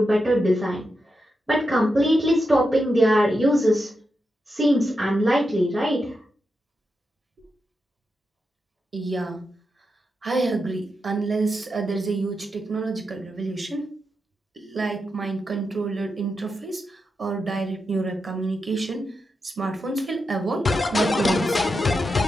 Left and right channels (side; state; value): both; normal; correlation 0.87